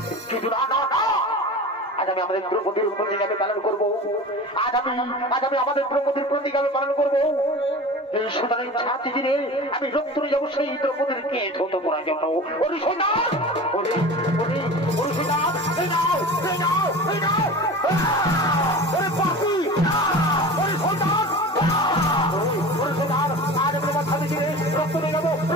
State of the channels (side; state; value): both; normal; correlation 0.35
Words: কিন্তু না না না, আজ আমি আমাদের দ্রৌপদীর প্রতিজ্ঞা আমি পালন করবো। আজ আমি আমাদের দ্রৌপদীর প্রতিজ্ঞা আমি পালন করবো। এই সুতরাং ছাতি দিনে আমি রক্ত নিয়ে যাবো সেই দ্রৌপদীর কে ধৌত করার জন্য। ওরে সৈন্যার, ওরে ওরে ওরে সৈন্যার, এই নাও এই নাও এই নাও, ওরে পাখি, ওরে সৈন্যার, ওরে সৈন্যার, আজ আমি আমার ছাতি দিনে রক্ত নিয়ে যাবো,